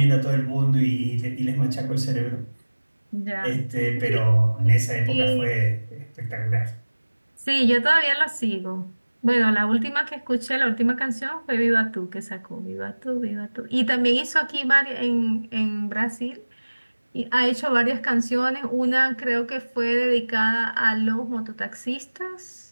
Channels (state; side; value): inverted; both; correlation -1.00